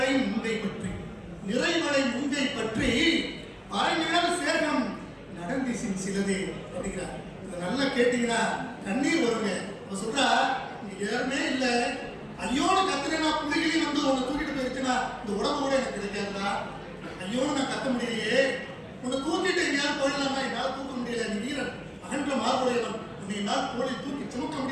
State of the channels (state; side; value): identical; both; correlation 1.00